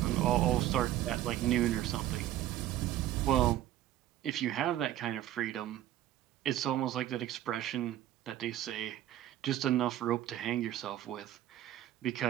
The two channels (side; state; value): left; quieter; 13.1 dB